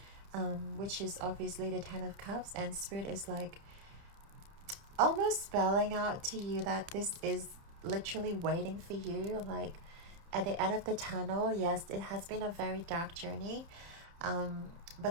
which is obviously the Ten of Cups. And Spirit is like almost spelling out to you that this is literally waiting for you, like at the end of the tunnel. Yes, it has been a very dark journey,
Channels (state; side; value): late; left; 30 ms